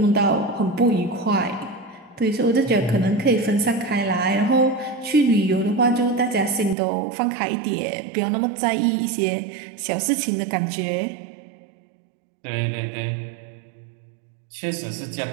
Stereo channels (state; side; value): drops out; left; at 6.8 s